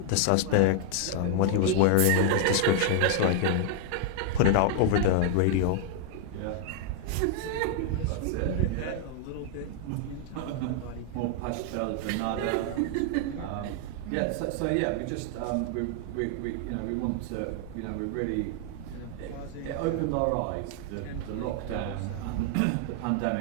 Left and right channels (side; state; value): both; different; correlation 0.00